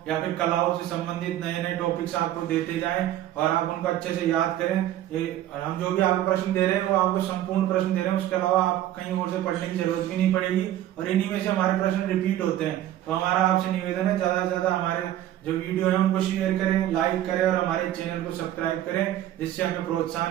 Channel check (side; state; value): left; quieter; 12.8 dB